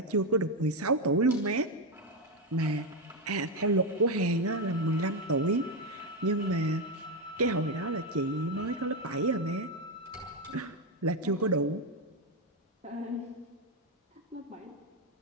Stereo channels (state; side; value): normal; both; correlation 0.08